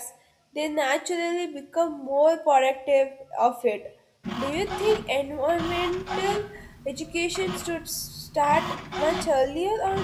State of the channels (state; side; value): identical; both; correlation 1.00